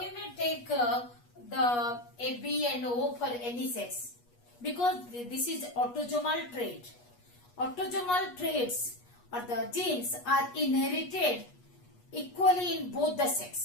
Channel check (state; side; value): late; right; 8.3 ms